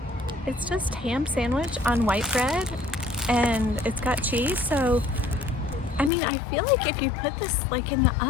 it's just ham sandwich on white bread, and it's got cheese. So I mean, I feel like if you put this like in the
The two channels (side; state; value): right; drops out; at 6.1 s